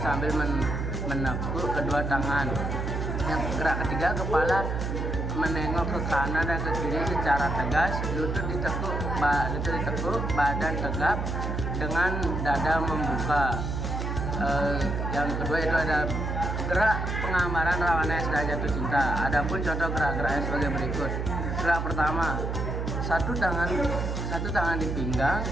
menekuk kedua tangan. Yang gerak ketiga, kepala menengok ke kanan dan ke kiri secara tegas, lutut ditekuk, badan tegap dengan dada membuka. Yang kedua itu ada gerak penggambaran rawana yang sudah jatuh cinta. Adapun contoh gerak-geraknya sebagai berikut. Gerak pertama, satu tangan di pinggang,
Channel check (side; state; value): right; noise; hum, 2 dB below the sound